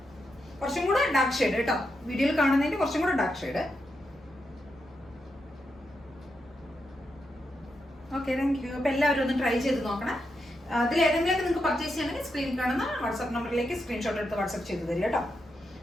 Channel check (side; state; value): both; normal; correlation 0.85